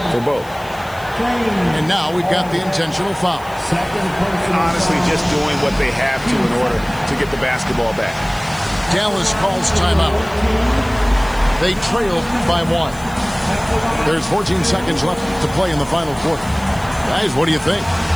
for both. And now we've got the intentional foul. Honestly, just doing what they have to in order to get the basketball back. Dallas calls timeout. They trail by 1. There's 14 seconds left to play in the final quarter. Guys, what do you think?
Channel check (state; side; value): noise; left; hiss, 22 dB below the sound